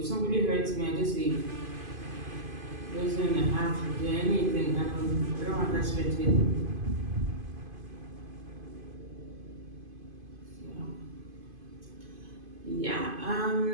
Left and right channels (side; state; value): left; late; 2.5 ms